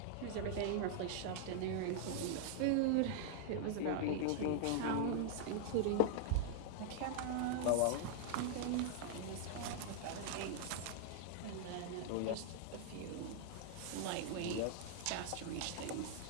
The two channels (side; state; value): both; different; correlation -0.01